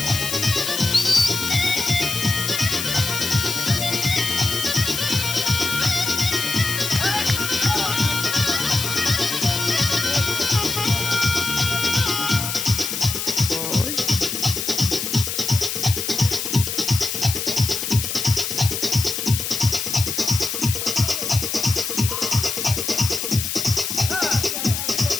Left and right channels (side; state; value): left; noise; hiss, 3 dB below the sound